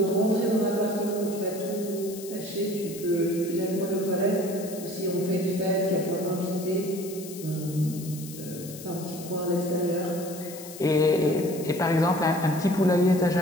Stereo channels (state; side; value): noise; left; hiss, 14 dB below the sound